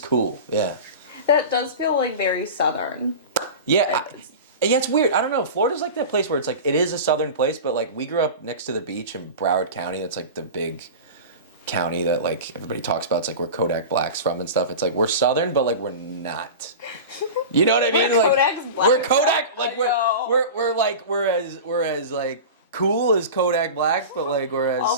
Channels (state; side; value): inverted; both; correlation -0.30